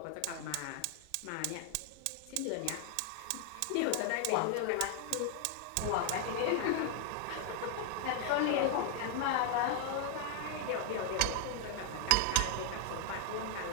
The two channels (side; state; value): both; different; correlation 0.00